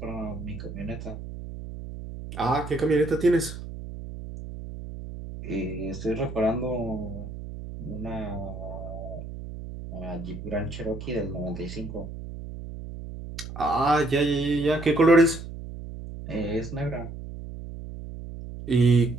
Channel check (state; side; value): noise; right; hum, 10 dB below the sound